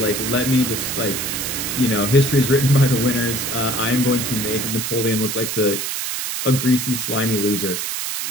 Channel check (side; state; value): right; noise; hiss, 3 dB below the sound